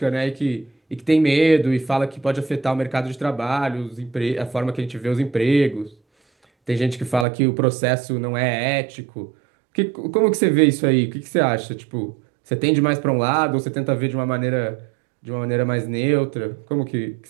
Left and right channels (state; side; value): drops out; left; at 7.2 s